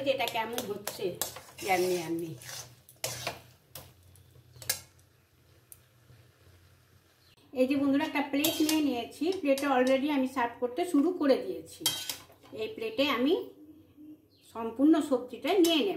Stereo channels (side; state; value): both; identical; correlation 1.00